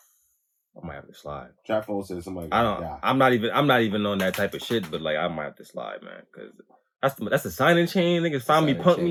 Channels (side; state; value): both; identical; correlation 1.00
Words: I might have to slide. Trap phone said somebody. I'm not even on that type of shit, but like I might have to slide, man, because that's the signing chain. Niggas find me, punk